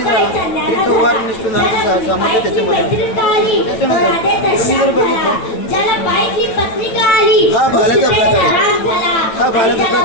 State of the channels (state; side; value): late; right; 9.0 ms